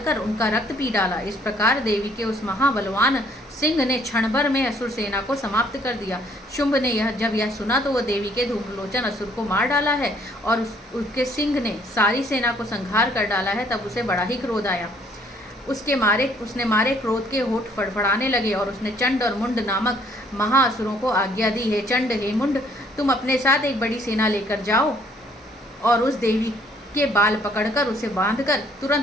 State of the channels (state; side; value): normal; both; correlation 0.63